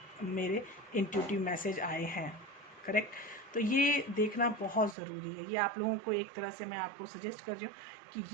मेरे इंट्यूटिव मैसेज आए हैं। करेक्ट। तो ये देखना बहुत ज़रूरी है। ये आप लोगों को एक तरह से मैं आपको सजेस्ट कर रही हूँ कि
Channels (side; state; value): left; drops out; at 5.0 s